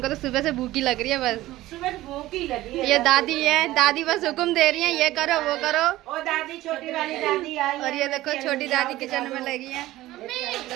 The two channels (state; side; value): quieter; left; 16.4 dB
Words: तो सुबह से भूखी लग रही है, बस सुबह भूखी लगी है। ये दादी है, दादी बस हुक्म दे रही है, ये करो वो करो। ओ दादी, छोटी वाली दादी आई। और ये देखो छोटी दादी किचन में लगी है।